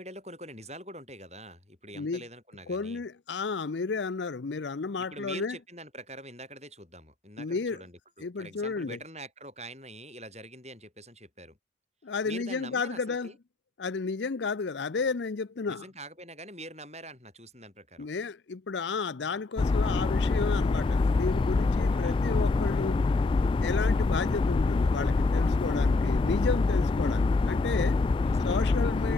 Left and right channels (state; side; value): quieter; right; 3.4 dB